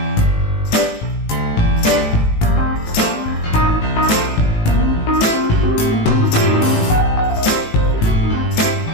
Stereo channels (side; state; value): right; late; 18 ms